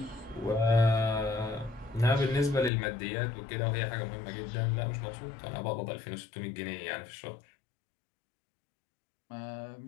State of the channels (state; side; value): drops out; right; at 2.7 s